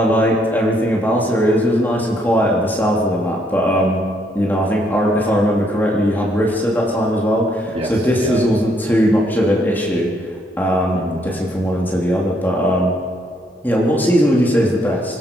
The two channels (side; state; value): both; normal; correlation 0.71